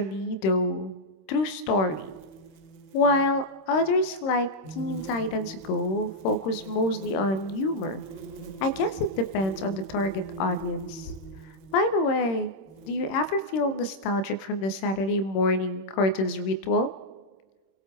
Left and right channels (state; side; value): late; right; 26 ms